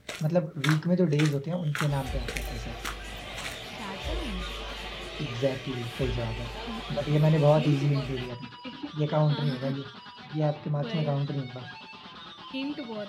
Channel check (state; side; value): identical; both; correlation 1.00